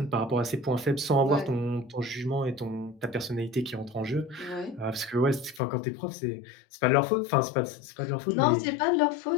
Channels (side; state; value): right; drops out; at 5.6 s